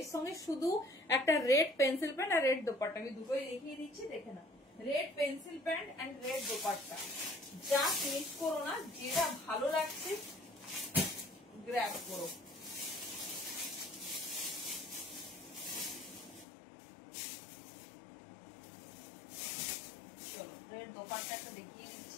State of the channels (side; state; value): right; drops out; at 16.4 s